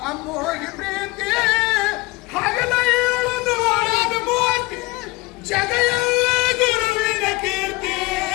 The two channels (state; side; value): quieter; right; 21.7 dB